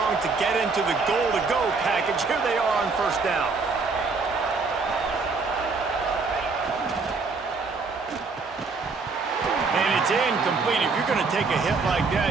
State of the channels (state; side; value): quieter; left; 4.3 dB